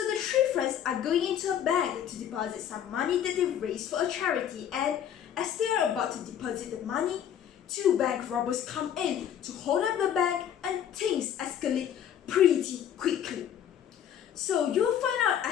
the three friends are going into a bank to deposit some money that they've raised for a charity, and as they are about to deposit the money, two bank robbers come in to hold up the bank and things escalate pretty quickly. So you'll find out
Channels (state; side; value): quieter; right; 9.6 dB